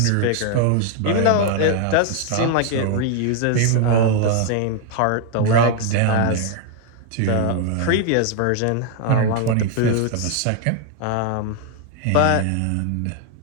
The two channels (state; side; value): different; both; correlation 0.00